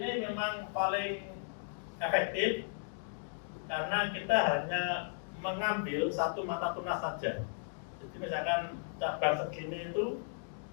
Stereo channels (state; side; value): silent; right; digital silence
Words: memang paling efektif karena kita hanya mengambil satu mata tunas saja. Jadi misalkan cabang segini itu